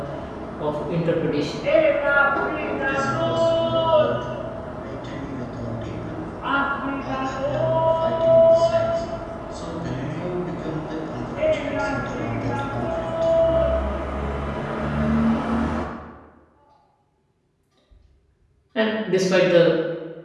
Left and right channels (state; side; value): identical; both; correlation 1.00